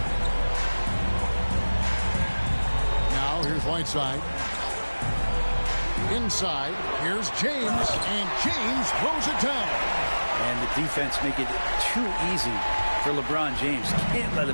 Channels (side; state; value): both; inverted; correlation -1.00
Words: Now here's Whiteside. Inside, here's James, and James throws it down. And the defense make it too easy for LeBron James. Can't let